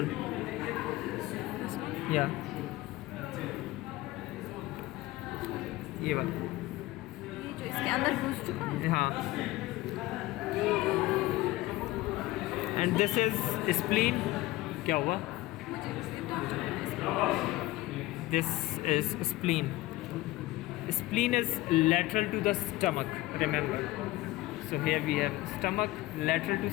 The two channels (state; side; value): quieter; right; 18.1 dB